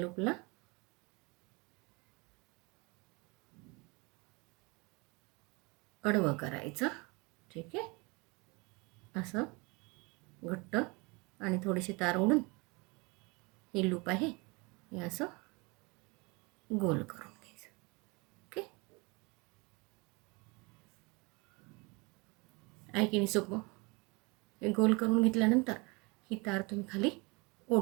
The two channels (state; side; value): quieter; left; 27.7 dB